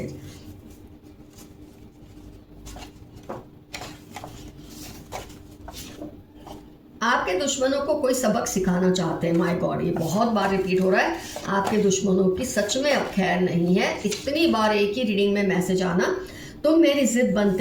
आपके दुश्मनों को कोई सबक सिखाना चाहते हैं। माय गॉड, ये बहुत बार रिपीट हो रहा है। आपके दुश्मनों की सच में अब खैर नहीं है। इतनी बार एक ही रीडिंग में मैसेज आना, तुम मेरी जिद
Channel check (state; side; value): identical; both; correlation 1.00